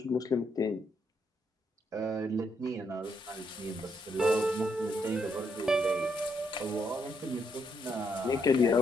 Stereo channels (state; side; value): normal; both; correlation 0.76